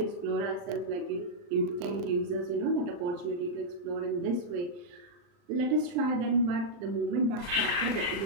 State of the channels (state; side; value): late; left; 39 ms